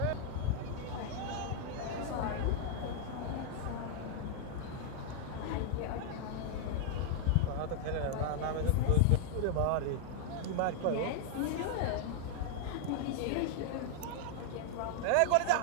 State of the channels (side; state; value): both; different; correlation 0.00